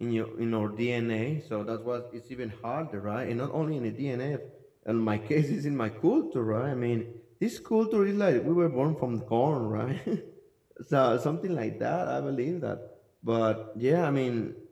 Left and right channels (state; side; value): identical; both; correlation 1.00